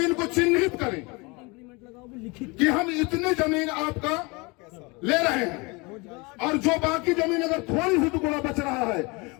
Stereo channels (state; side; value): quieter; right; 27.1 dB